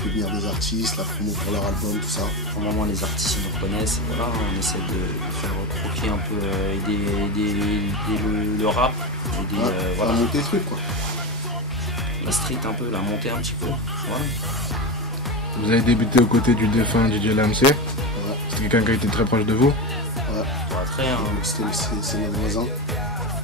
fait venir des artistes, la promo pour leur album, tout ça. Pour le moment, les artistes ils nous reconnaissent. Et voilà, on essaie de faire recroquer un peu, aider le rap. Voilà. Monter le truc, quoi. La street un peu, la montée un petit peu. Voilà. Vous avez débuté aux côtés du défunt DJ Lamc. Ouais. C'est quelqu'un qui a été très proche de vous. Ouais. Pas très, hein. C'est notre voisin.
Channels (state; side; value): normal; both; correlation 0.20